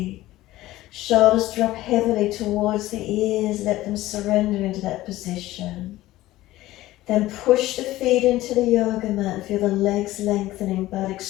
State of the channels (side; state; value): right; quieter; 16.4 dB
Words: Shoulders drop heavily towards the ears, let them surrender into that position. Then push the feet into the yoga mat and feel the legs lengthening, buttocks